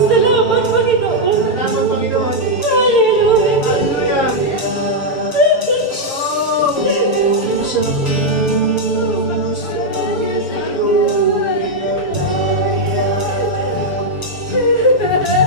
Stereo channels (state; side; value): late; right; 6.7 ms